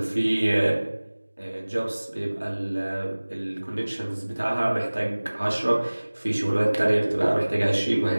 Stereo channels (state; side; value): inverted; both; correlation -1.00